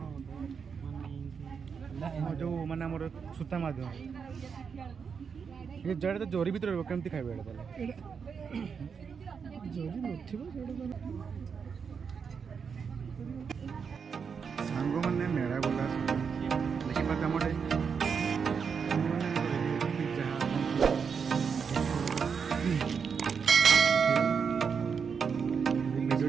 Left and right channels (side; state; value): left; quieter; 6.2 dB